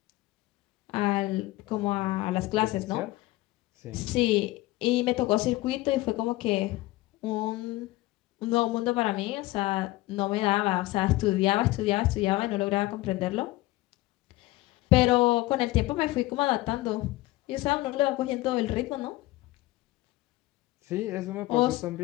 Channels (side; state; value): right; quieter; 18.6 dB